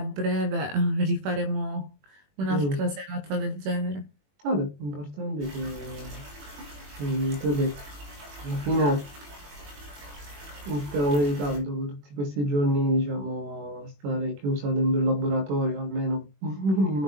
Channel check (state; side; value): late; left; 21 ms